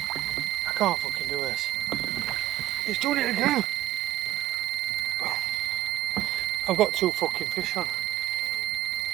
I can't fucking do this. It's doing it again. I've got 2 fucking fish on.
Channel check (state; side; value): quieter; left; 14.8 dB